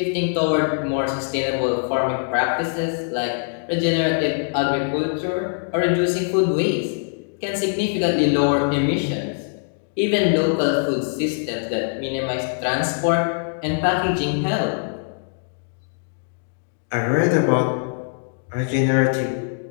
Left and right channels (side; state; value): right; silent; digital silence